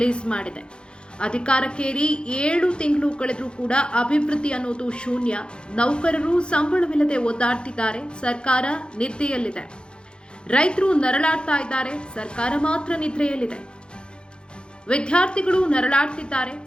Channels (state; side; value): late; right; 0.052 ms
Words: ಮಾಡಿದೆ. ಅಧಿಕಾರಕ್ಕೇರಿ 7 ತಿಂಗಳು ಕಳೆದರೂ ಕೂಡ ಅಭಿವೃದ್ಧಿ ಅನ್ನೋದು ಶೂನ್ಯ. ನೌಕರರು ಸಂಬಳವಿಲ್ಲದೆ ಒದ್ದಾಡ್ತಿದ್ದಾರೆ, ಸರ್ಕಾರ ನಿದ್ದೆಯಲ್ಲಿದೆ. ರೈತರು ನರಳಾಡ್ತಾ ಇದ್ದಾರೆ, ಸರ್ಕಾರ ಮಾತ್ರ ನಿದ್ರೆಯಲ್ಲಿದೆ. ವಿದ್ಯಾರ್ಥಿಗಳು ನರಳಾಡ್ತಿದ್ದಾರೆ,